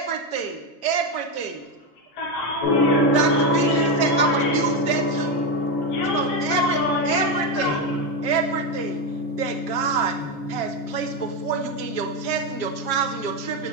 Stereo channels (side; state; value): right; late; 7.4 ms